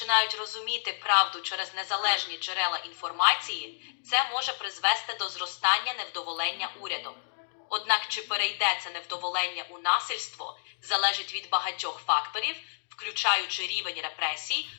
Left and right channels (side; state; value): right; silent; digital silence